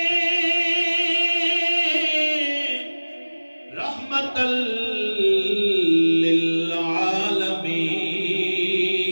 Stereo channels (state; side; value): inverted; both; correlation -1.00